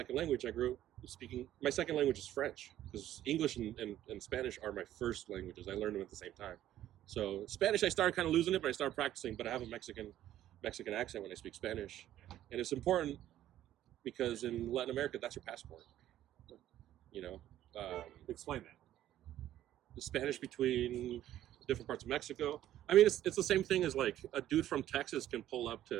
language. I grew up speaking. My second language is French because English and Spanish are my first languages. I learned them at the same time. So Spanish, I started kind of losing it, but I started practicing. But I have a Mexican accent when I speak Spanish, and it's important because in Latin America, that's your passport. You know, explain that. The Spanish between different parts of Mexico. I mean, it's the same thing as like a dude from Texas can pull up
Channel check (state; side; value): quieter; left; 12.7 dB